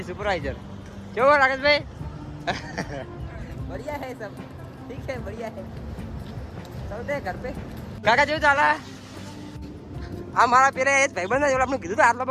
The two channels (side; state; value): both; identical; correlation 1.00